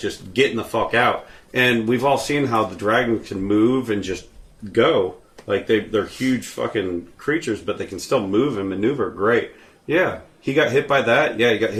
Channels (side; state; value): both; identical; correlation 1.00